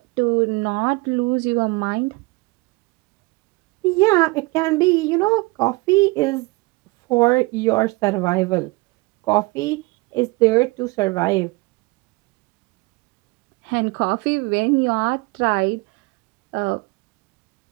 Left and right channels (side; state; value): left; quieter; 24.5 dB